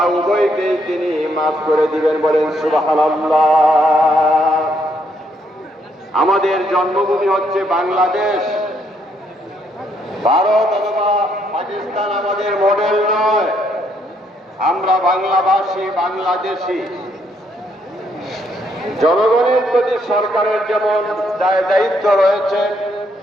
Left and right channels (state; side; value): normal; both; correlation 0.73